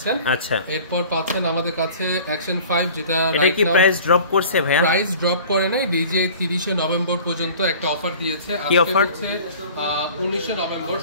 আচ্ছা, এরপর পাচ্ছেন আমাদের কাছে অ্যাকশন 5, যেটা এটা কি প্রাইস ড্রপ করছে ভাইয়া? প্রাইস ড্রপ করে নাই, ডিজে 30 নভেম্বর পর্যন্ত একটা অফার দিয়েছে। কি অফার? হচ্ছে 19 নভেম্বর,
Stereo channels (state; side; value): inverted; both; correlation -0.45